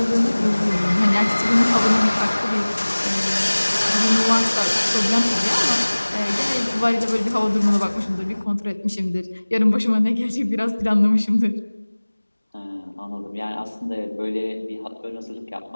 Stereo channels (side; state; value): both; inverted; correlation -1.00